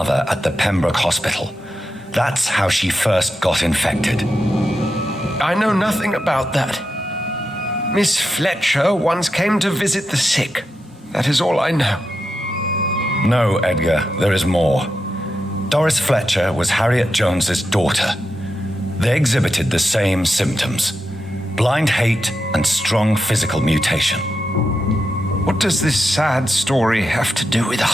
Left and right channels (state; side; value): normal; both; correlation 0.87